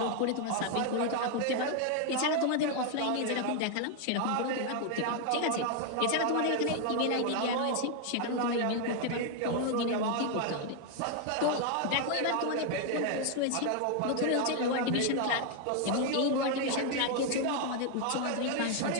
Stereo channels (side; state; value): both; different; correlation 0.01